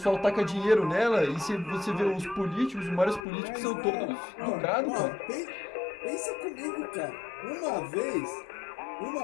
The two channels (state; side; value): drops out; right; at 3.2 s